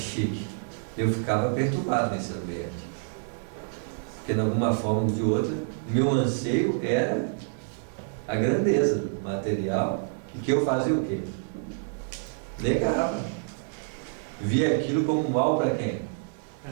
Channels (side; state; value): left; silent; 58 dB below the other